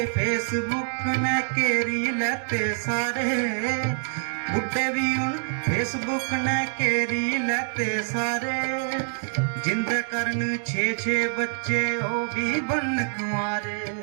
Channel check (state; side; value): silent; left; digital silence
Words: फेसबुक ने घेरी लैते सारे बुड्ढे भी उन फेसबुक ने घेरी लैते सारे जिंदे करन 6-6 बच्चे ओ भी बन कुंवारे